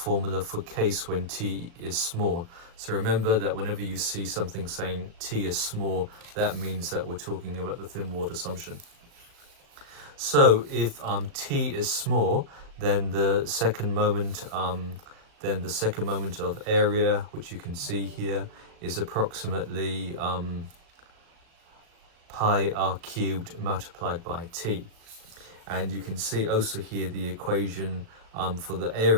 for case when t is small. So remember that whenever you see something saying t is small, that means that we're talking about the thin walled assumption. So if t is small, then the second moment of area, which you can see here, is approximately pi r cubed multiplied by t. And you can see also here the equation for the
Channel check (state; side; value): late; left; 37 ms